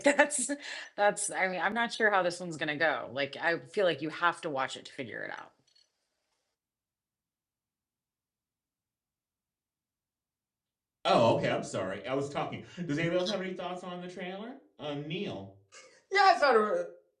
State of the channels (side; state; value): both; identical; correlation 1.00